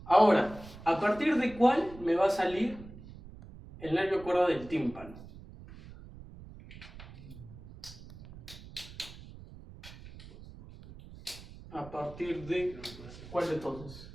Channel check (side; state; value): right; noise; rumble, 16 dB below the sound